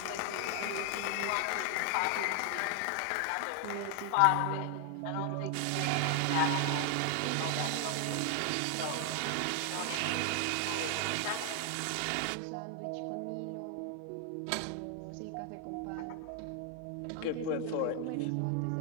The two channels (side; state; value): both; different; correlation 0.00